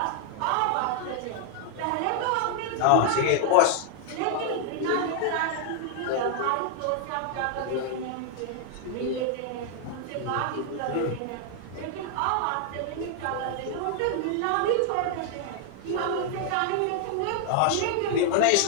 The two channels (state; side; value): different; both; correlation 0.00